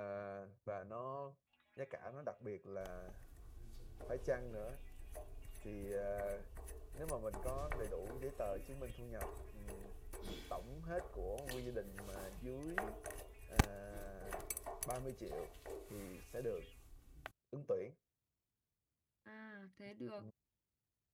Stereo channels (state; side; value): identical; both; correlation 1.00